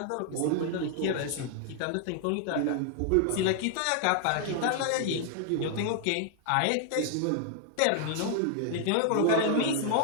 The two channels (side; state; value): both; different; correlation 0.00